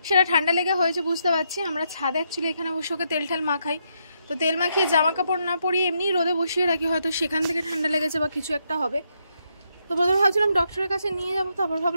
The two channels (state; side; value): inverted; both; correlation -0.78